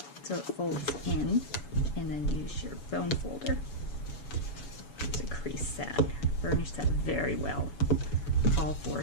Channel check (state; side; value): late; right; 7.0 ms